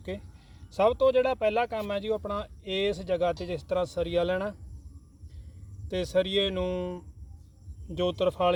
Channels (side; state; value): both; identical; correlation 1.00